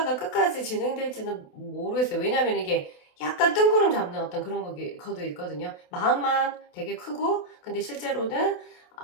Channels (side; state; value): right; late; 28 ms